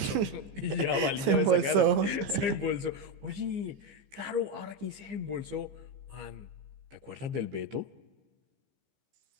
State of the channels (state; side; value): late; left; 15 ms